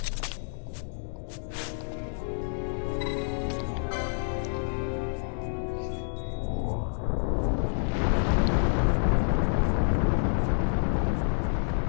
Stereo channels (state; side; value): silent; right; digital silence